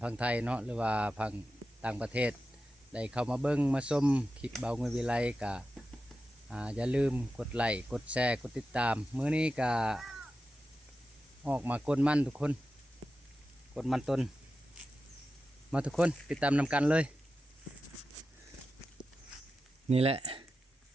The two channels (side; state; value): both; normal; correlation 0.92